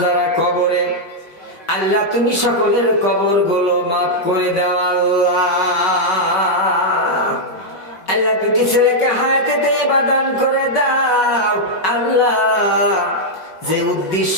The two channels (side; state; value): right; late; 5.3 ms